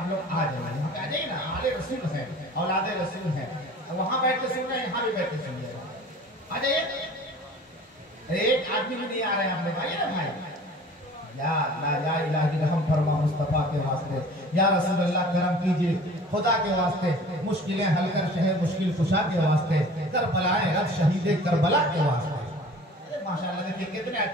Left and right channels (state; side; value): normal; both; correlation 0.45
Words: लोग आ जाइए, आ जाइए ना। आले रसूल है, औलादे रसूल है, वहां बैठ के सुन रहे हैं, यहाँ भी बैठ के सुनिए, आ जाइए। एक आदमी भी नहीं आ रहे हैं, आप लोग आइए ना भाई। या इलाही रहम फरमा मुस्तफा के वास्ते, या रसूल अल्लाह करम कीजिए खुदा के वास्ते, मुश्किलें हल कर शहर मुश्किल कुशा के वास्ते, करबलाए रब शहीदे करबला के वास्ते। माशाअल्लाह देखिए कितने